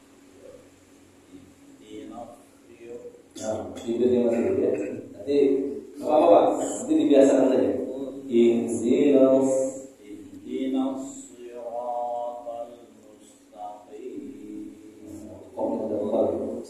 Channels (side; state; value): both; identical; correlation 1.00